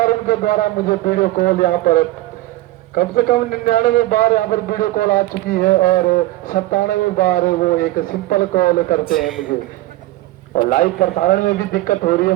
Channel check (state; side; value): quieter; left; 17.2 dB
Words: उनके द्वारा मुझे वीडियो कॉल यहाँ पर कम से कम 99 बार यहाँ पर वीडियो कॉल आ चुकी है और 97 बार वो एक सिंपल कॉल करते हैं मुझे, और लाइव प्रसारण में भी दिक्कत हो रही है